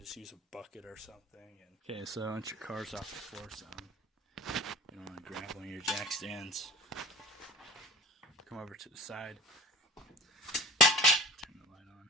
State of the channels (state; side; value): normal; both; correlation 0.39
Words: just use a bucket or something. Okay, so once your car's off the floor some, you don't want to grab one of your jack stands. Come over to the side, turn the light on,